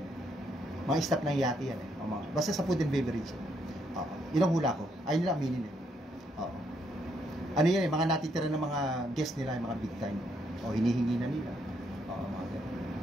Mga staff ng yate yan. Basta sa food and beverage. Oo. Yun ang hula ko. Ayun nila aminin eh. Oo. Ano yan eh, mga natitira ng mga guest nila, yung mga big time. O hinihingi na nila. Oo, mga ganun.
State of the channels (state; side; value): normal; both; correlation 0.74